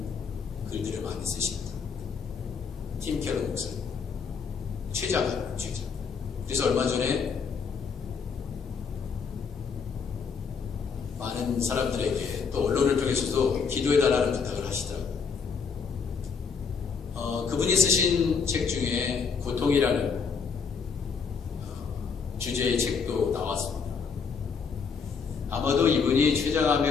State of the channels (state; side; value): quieter; right; 5.8 dB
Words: 글들을 많이 쓰십니다. 팀 켈러 목사님, 최자가. 그래서 얼마 전에 많은 사람들에게 또 언론을 통해서도 기도해달라는 부탁을 하시더라고요. 그분이 쓰신 책 중에 고통이라는 주제의 책도 나왔습니다. 아마도 이분이